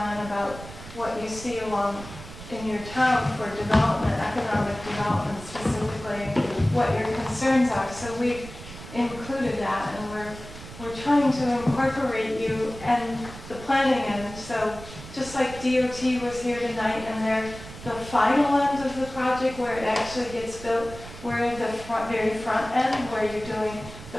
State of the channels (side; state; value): right; noise; rumble, 14 dB below the sound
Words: about what you see along in your town for development, economic development specifically, what your concerns are. So we've included that, and we're trying to incorporate you and the planning end. So just like DOT was here tonight, and they're the final end of the project where it actually gets built, we're the very front end where you're doing the